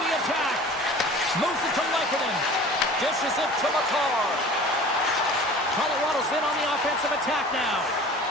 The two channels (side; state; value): both; normal; correlation 0.42